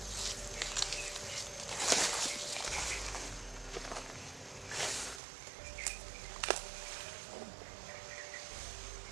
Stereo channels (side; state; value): left; drops out; at 5.2 s